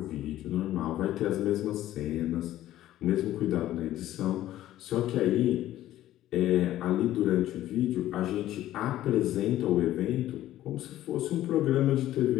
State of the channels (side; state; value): right; quieter; 13.7 dB